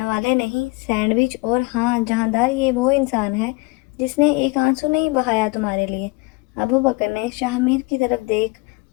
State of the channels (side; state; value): right; quieter; 26.2 dB